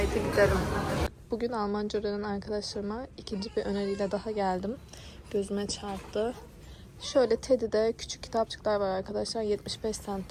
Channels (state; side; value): identical; both; correlation 1.00